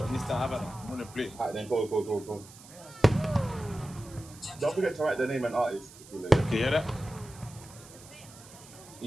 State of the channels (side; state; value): right; noise; hiss, 20 dB below the sound